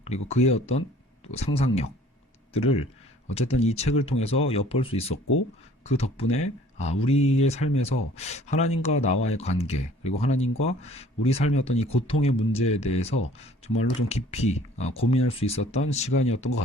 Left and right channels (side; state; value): both; normal; correlation 0.53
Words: 그리고 그의 어떤 상상력들을 어쨌든 이 책을 통해서 엿볼 수 있었고, 그 덕분에 우리의 삶에서 하나님과 나와의 관계, 그리고 하나님과 우리 삶의 어떤 이 고통의 문제에 대해서 정말로 좀 깊이 고민할 수 있었던 시간이었던 것